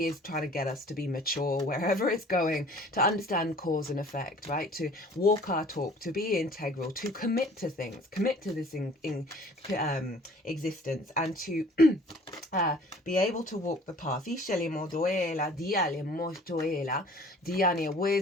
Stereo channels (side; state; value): both; normal; correlation 0.50